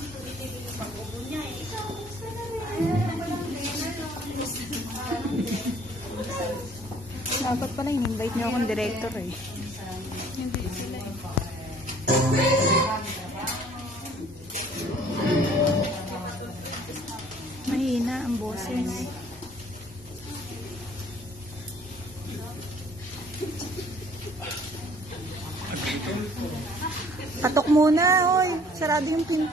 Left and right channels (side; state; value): both; normal; correlation 0.56